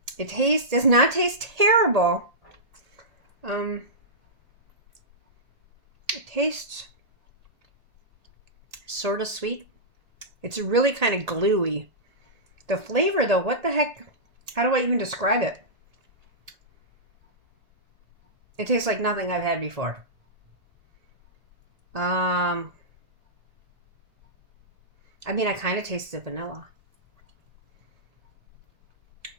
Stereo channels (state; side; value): late; left; 1.8 ms